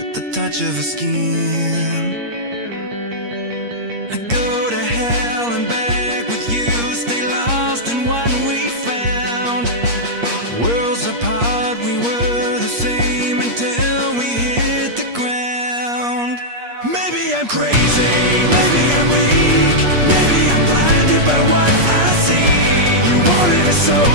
the touch of her skin. I go to hell and back with you, stay lost in what we found. Worlds apart, we were the same until we hit the ground. Maybe I'm crazy, maybe I'm weak, maybe I'm blinded by what I see. You wanted a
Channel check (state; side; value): late; left; 8.5 ms